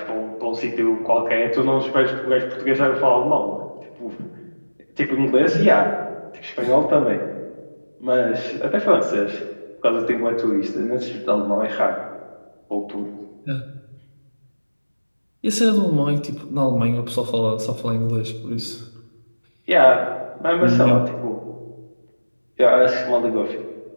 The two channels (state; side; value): inverted; both; correlation -1.00